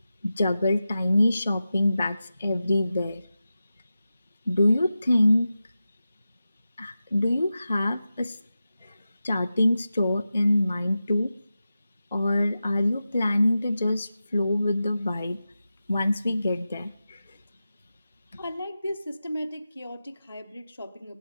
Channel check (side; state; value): both; inverted; correlation -0.93